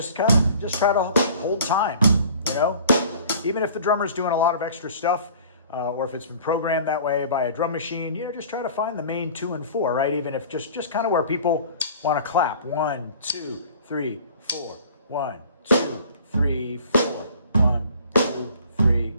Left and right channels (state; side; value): inverted; both; correlation -0.47